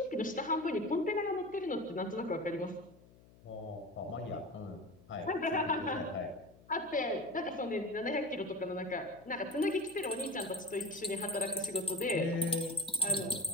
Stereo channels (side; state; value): left; noise; hum, 24 dB below the sound